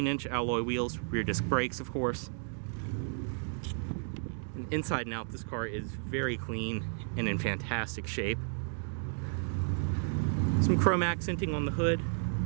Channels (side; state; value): left; silent; 56 dB below the other